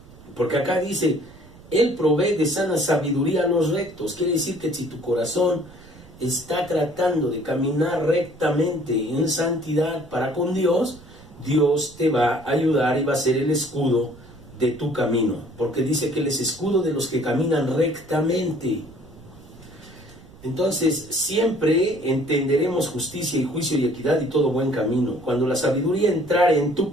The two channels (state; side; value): noise; right; rumble, 22 dB below the sound